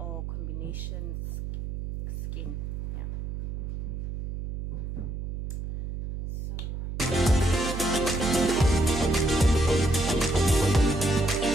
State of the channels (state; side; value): noise; right; hum, 6 dB below the sound